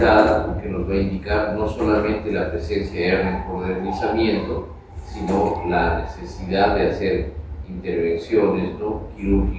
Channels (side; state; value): both; identical; correlation 1.00